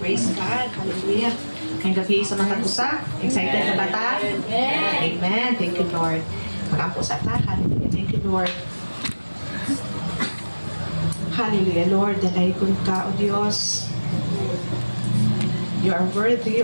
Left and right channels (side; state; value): both; inverted; correlation -1.00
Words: God. Hallelujah. Ngayong gabi sa matagusa. Excited na ba ta? Amen. Thank you, Lord. Magampo sa ta. Hallelujah. Thank you, Lord. Hallelujah, Lord. Dalaygon ka, O Diyos. You are worthy,